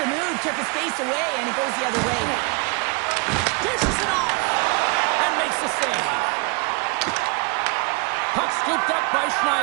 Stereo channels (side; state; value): left; quieter; 30.4 dB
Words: move took his face away, and it goes the other way. Dishes it off and makes the save. Puck scooped up by